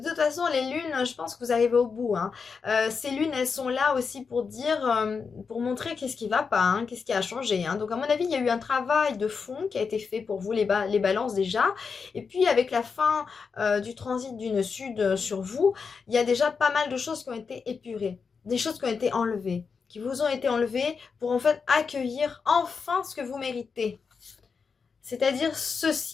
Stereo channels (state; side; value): quieter; right; 5.5 dB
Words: toute façon, les lunes, je pense que vous arrivez au bout, hein. Ces lunes, elles sont là aussi pour dire, pour montrer qu'est-ce qui va pas, hein, qu'est-ce qui a changé, hein. Donc, à mon avis, il y a eu un travail de fond qui a été fait pour vous, les balances déjà. Et puis, avec la fin du transit d'une sud sur vous, il y a déjà pas mal de choses qui ont été épurées, des choses qui ont été enlevées, qui vous ont été enlevées pour en fait accueillir enfin ce que vous méritez. C'est-à-dire